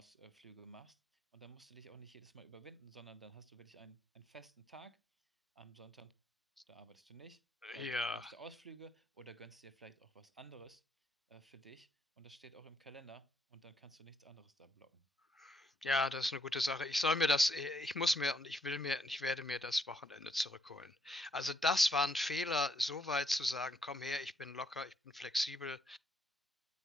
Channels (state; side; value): normal; both; correlation 0.74